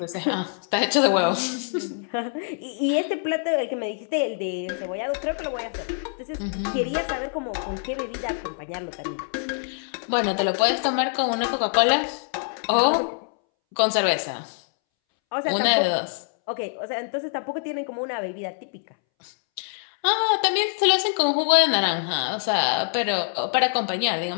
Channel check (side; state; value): right; silent; 62 dB below the other